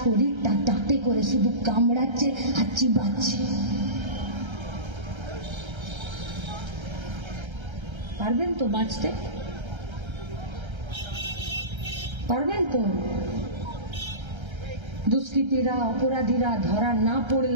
দাঁতে করে শুধু কামড়াচ্ছে আর চিবাচ্ছে। পারবেন তো বাঁচতে? পারবেন তো? দুষ্কৃতীরা অপরাধীরা ধরা না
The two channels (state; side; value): late; left; 1.3 ms